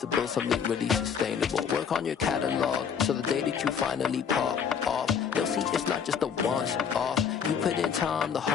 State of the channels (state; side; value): quieter; right; 7.2 dB